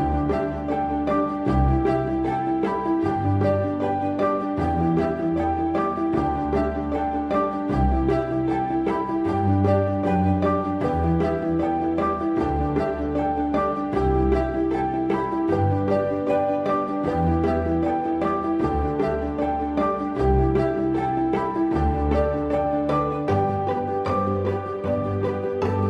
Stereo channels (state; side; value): identical; both; correlation 1.00